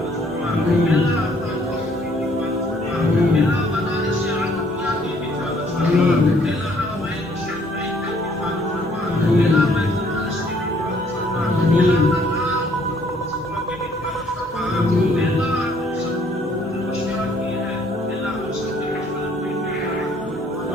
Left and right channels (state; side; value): normal; both; correlation 0.63